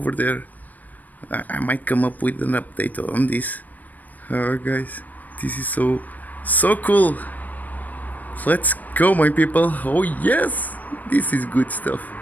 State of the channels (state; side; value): late; right; 0.082 ms